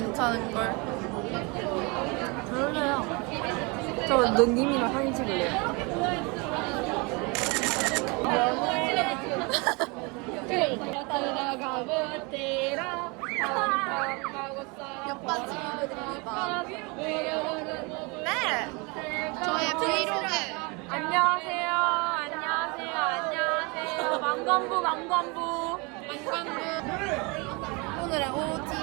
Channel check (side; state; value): left; quieter; 29.0 dB